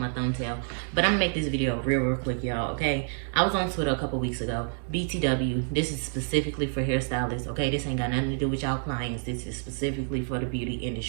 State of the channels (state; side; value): silent; left; 59 dB below the other